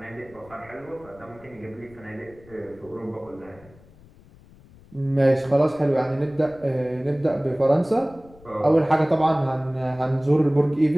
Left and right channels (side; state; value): left; noise; rumble, 24 dB below the sound